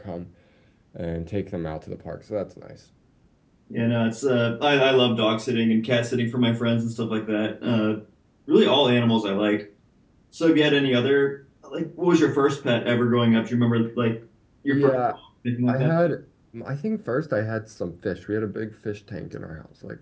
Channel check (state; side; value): identical; both; correlation 1.00